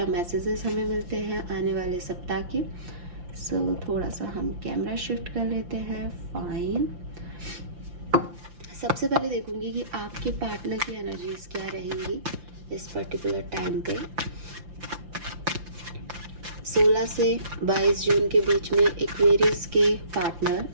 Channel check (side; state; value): left; late; 5.8 ms